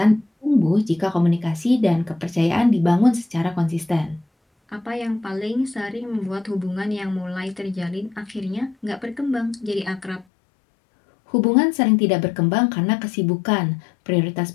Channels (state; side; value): drops out; right; at 10.2 s